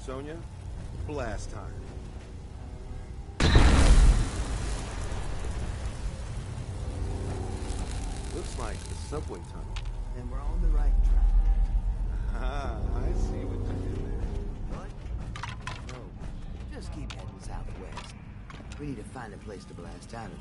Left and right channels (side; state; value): both; identical; correlation 1.00